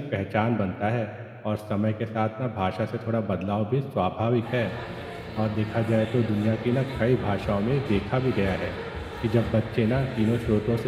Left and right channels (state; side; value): identical; both; correlation 1.00